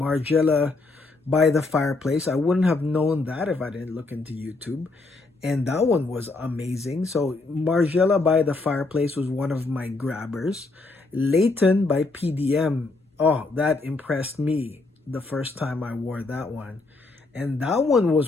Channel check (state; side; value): quieter; right; 3.4 dB